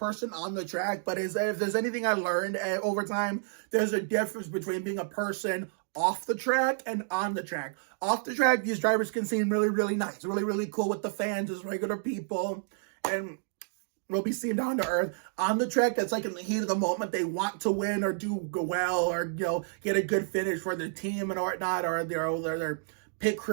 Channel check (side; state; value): left; silent; digital silence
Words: on the track, but if there's anything I learned over time, there's a difference between being a person off the track and on the track. Off the track, these drivers can seem really, really nice, really, really cool with the fans as regular people, and will be seen down to earth. On the track, that's like in the heat of the moment, they want to win or do well or get a good finish for their team and whatnot, or their pit